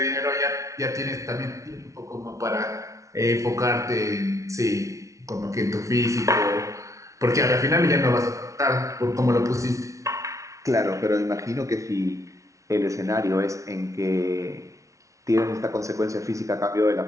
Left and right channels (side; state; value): left; late; 0.15 ms